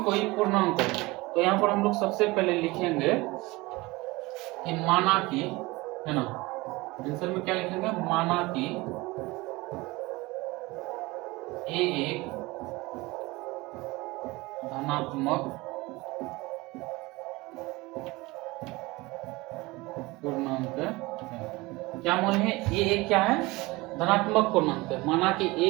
कोई पूर्णांक हो। तो यहाँ पर हम लोग सबसे पहले लिखेंगे कि माना कि, है ना, आंसर में क्या लिखेंगे, माना कि a एक धनात्मक पूर्णांक है। क्या मान है, a एक क्या है, धनात्मक पूर्णांक है। माना कि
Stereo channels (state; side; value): quieter; left; 22.1 dB